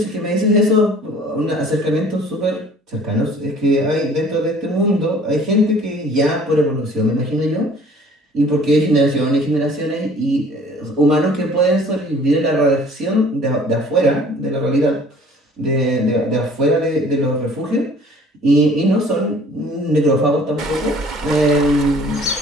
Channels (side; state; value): both; normal; correlation 0.52